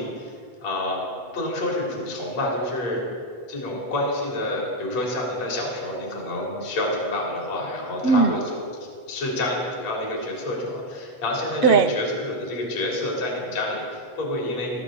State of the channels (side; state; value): right; late; 8.0 ms